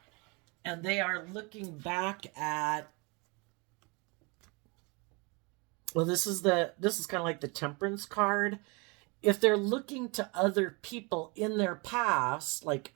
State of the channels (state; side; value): quieter; left; 29.6 dB